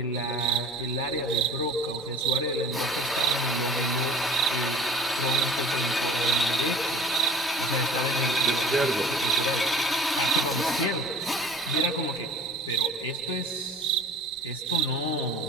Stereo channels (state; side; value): normal; both; correlation 0.42